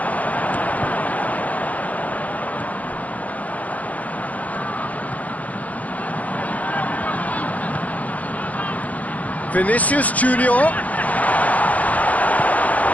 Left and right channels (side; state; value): right; late; 0.073 ms